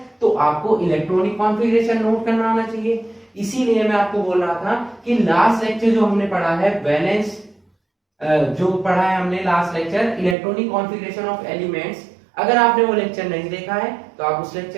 तो आपको इलेक्ट्रॉनिक कॉन्फ़िगरेशन नोट करना आना चाहिए। इसीलिए मैं आपको बोल रहा था कि लास्ट लेक्चर जो हमने पढ़ा है वैलेंस, जो पढ़ा है हमने last lecture electronic configuration of elements, अगर आपने वो लेक्चर नहीं देखा है तो आप उस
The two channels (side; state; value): left; drops out; at 10.4 s